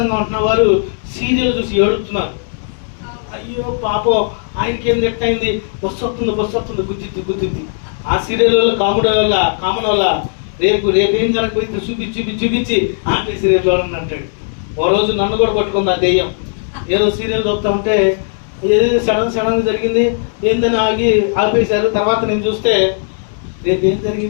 ఉంటున్న వారు సీరియల్ చూసి ఏడుతున్నారు. అయ్యో పాపం ఆయనకి ఏం ఎట్టయింది, బస్సు వస్తుంది గుద్దిద్ది. ఆ సీరియల్లో కామన్ వల్ల రేపు ఏం జరగకపోయింది చూపించి ఆపి సీరియల్ చూడండి అంటాడు. ఓ రోజు నన్ను కూడా పట్టుకుంది ఆ దెయ్యం. ఏదో సీరియల్ చూపుతా ఉంటే ఏదో సడన్ జరిగింది ఏందని ఆపేశారు. తర్వాత నేను చూస్తే రేపు ఏం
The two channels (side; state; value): right; silent; digital silence